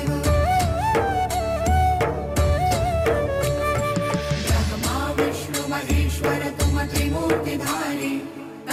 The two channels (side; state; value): both; identical; correlation 1.00